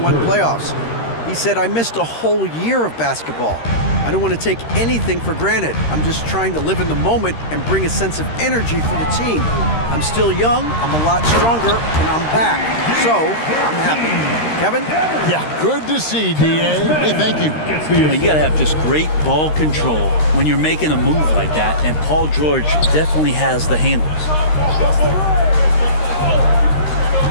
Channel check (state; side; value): late; right; 13 ms